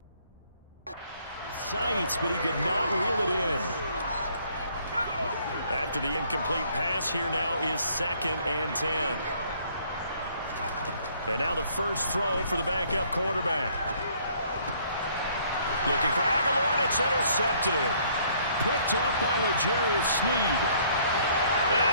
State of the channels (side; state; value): both; inverted; correlation -0.62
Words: sights, but he could not reel it in. After the incomplete pass, here now is 2nd and 10. And now the first throw for the backup quarterback. Looking for Aguilar, and it's intercepted. Picked off by L'Jarius Sneed.